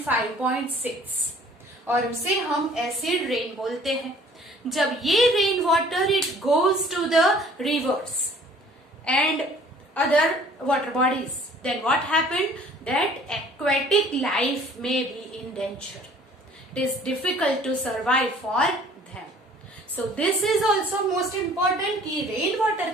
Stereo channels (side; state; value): both; normal; correlation 0.53